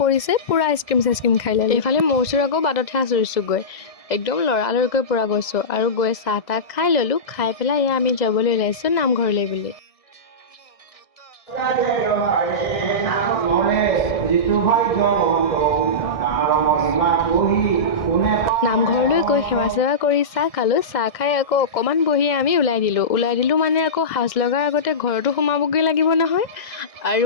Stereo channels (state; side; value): late; right; 1.6 ms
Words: পৰিছে, পূৰা আইচক্ৰীম খাই ল'লোঁ। এইফালে মোৰ আকৌ বাটতহে আচৰিছোঁ গৈ, একদম লৰালৰিকৈ পূৰা গৈছোঁ আৰু গৈ চাহ তাহ খাই ল'লোঁ। খাই পেলাই এয়া আমি যাবলৈ ওলাইছোঁ নামঘৰলৈ বুলি। নামঘৰলৈ গৈ সেৱা চেৱা কৰি চাহ খালোঁ। চাহ খাই আকৌ অকণমান বহি আমি ওলাই দিলোঁ মানে আকৌ সাজ লগাৰ আগতে ঘৰতো সোমাবগৈ লাগিব নহয়।